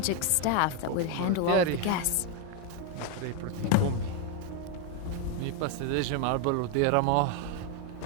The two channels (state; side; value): different; both; correlation 0.01